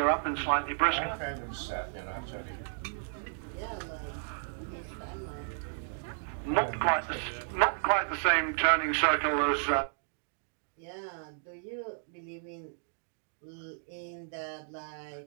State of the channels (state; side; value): silent; left; digital silence